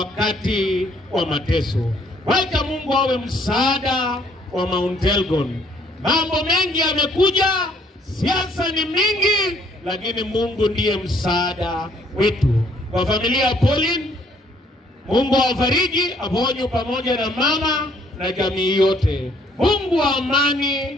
wa mateso. Wacha Mungu awe msaada wa Mount Elgon. Mambo mengi yamekuja, siasa ni mingi, lakini Mungu ndiye msaada wetu. Kwa familia ya Pauline, Mungu awafariji, aponye pamoja na mama na jamii yote. Mungu wa amani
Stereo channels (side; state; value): both; normal; correlation 0.64